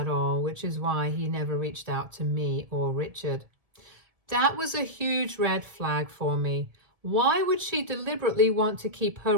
all, which is why he never reached out to me or Richard. That was a huge red flag for me. Why would she deliberately want to keep her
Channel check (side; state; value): left; late; 1.7 ms